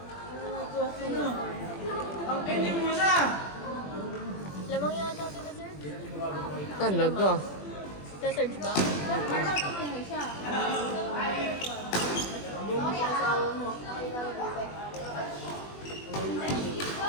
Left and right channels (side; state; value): right; late; 21 ms